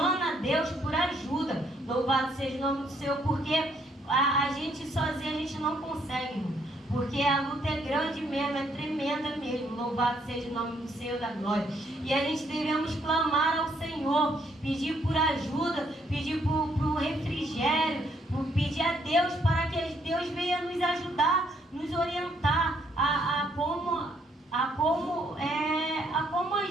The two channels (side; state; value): both; normal; correlation 0.70